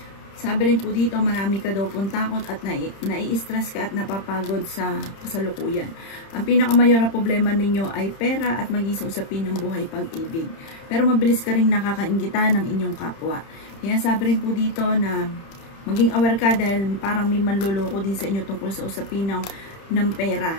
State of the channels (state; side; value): late; right; 31 ms